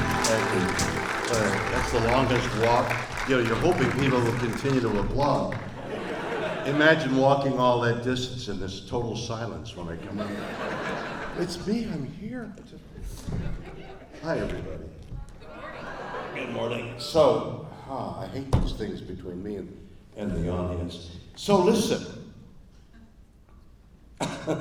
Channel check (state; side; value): identical; both; correlation 1.00